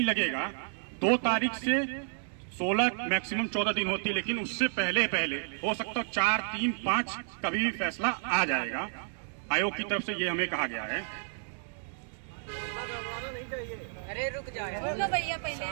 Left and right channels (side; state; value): left; silent; digital silence